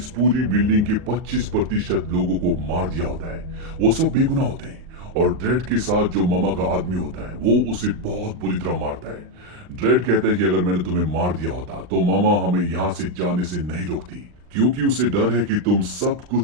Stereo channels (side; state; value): left; late; 39 ms